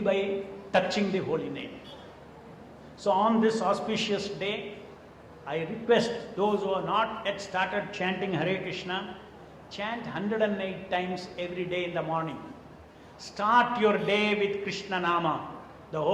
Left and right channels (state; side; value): identical; both; correlation 1.00